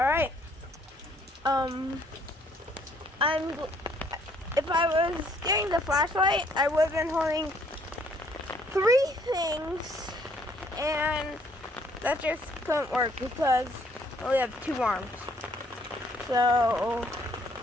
right. If I was getting the flashlight, I would have been holding 3 things, and that just couldn't work because I only have 2 arms. So,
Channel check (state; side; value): normal; both; correlation 0.64